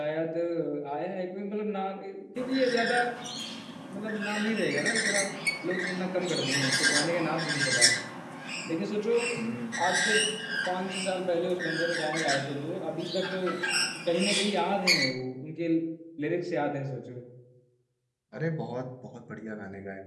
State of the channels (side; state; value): both; identical; correlation 1.00